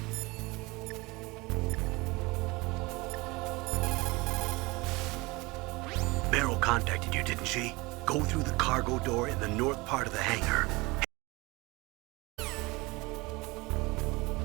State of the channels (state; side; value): quieter; left; 23.5 dB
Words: Meryl contacted you, didn't she? Go through the cargo door in the north part of the hangar.